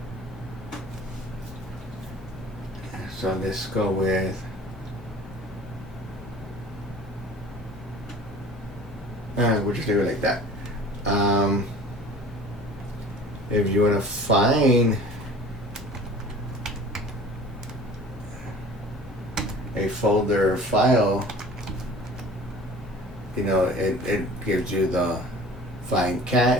So let's go with we'll just leave it like that. If you want to find a folder or file, you know, it gives you the find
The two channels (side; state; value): both; normal; correlation 0.45